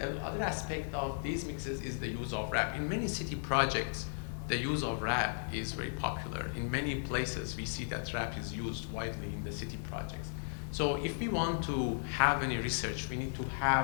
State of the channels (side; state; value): right; silent; digital silence